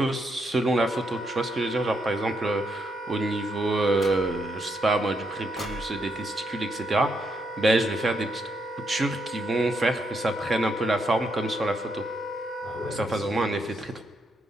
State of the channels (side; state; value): both; normal; correlation 0.78